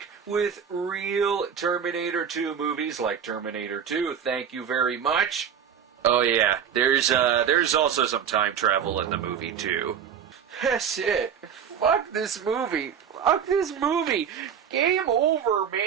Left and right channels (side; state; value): left; quieter; 8.0 dB